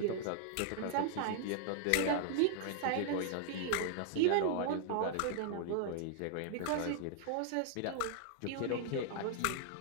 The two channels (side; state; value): both; different; correlation -0.01